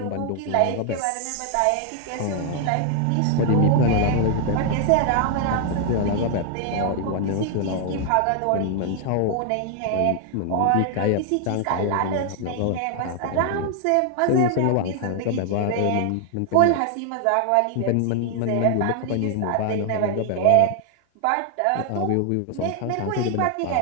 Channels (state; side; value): different; both; correlation 0.00